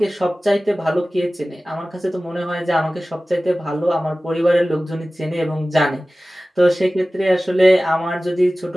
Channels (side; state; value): both; normal; correlation 0.97